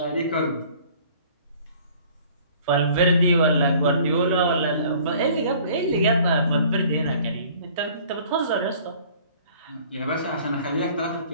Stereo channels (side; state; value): both; inverted; correlation -0.52